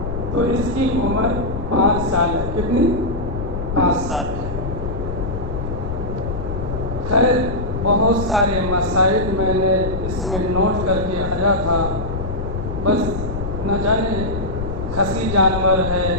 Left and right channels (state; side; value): noise; left; rumble, 5 dB below the sound